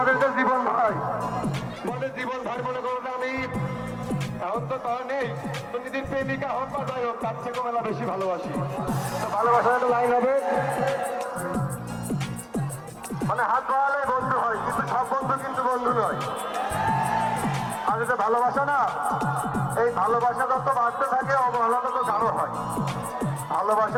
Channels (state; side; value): identical; both; correlation 1.00